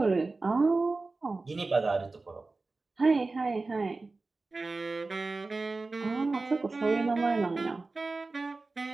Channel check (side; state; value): left; quieter; 3.6 dB